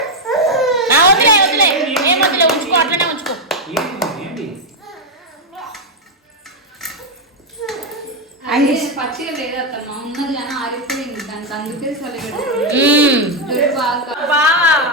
వదిలే వదిలే, ఏం వదిలే, ఉంచుకో, అట్లనే ఉంచుకో. పచ్చిగా లేదు అత్తమ్మ, ఉన్నది కానీ ఆరిపోయింది దానికి, అందుకే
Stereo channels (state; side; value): normal; both; correlation 0.02